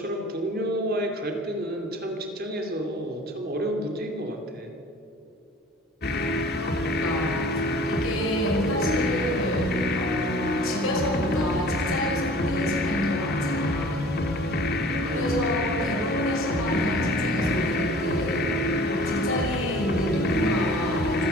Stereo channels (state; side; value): normal; both; correlation 0.47